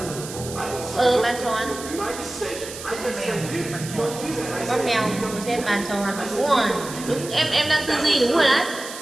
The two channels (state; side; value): noise; right; hiss, 11 dB below the sound